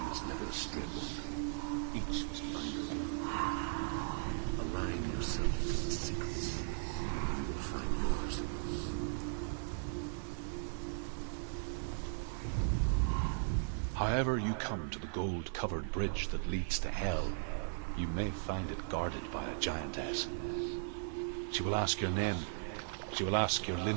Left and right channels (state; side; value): silent; left; 53 dB below the other